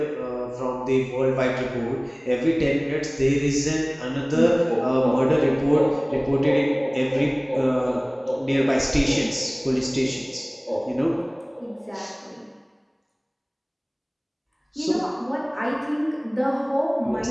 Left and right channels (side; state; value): both; identical; correlation 1.00